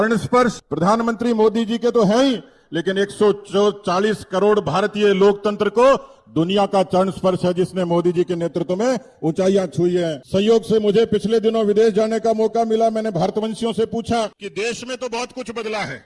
स्पर्श प्रधानमंत्री मोदी जी के तो है ही, लेकिन 140 करोड़ भारतीय लोकतंत्र को दुनिया का चरण स्पर्श है, जिसने मोदी जी के नेतृत्व में ऊंचाइयां छुई है। संयोग से मुझे पिछले दिनों विदेश जाने का मौका मिला। मैंने भारतवंशियों से पूछा कि देश में तो बहुत कुछ बदला है,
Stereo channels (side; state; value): both; identical; correlation 1.00